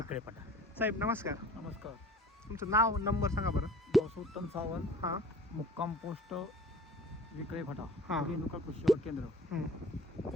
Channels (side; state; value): both; normal; correlation 0.45